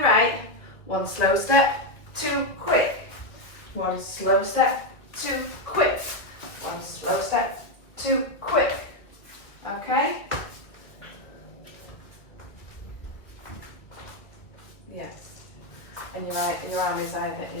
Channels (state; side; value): late; right; 1.5 ms